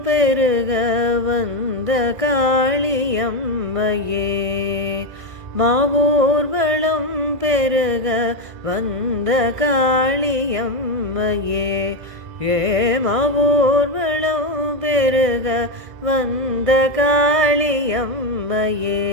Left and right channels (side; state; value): left; late; 1.6 ms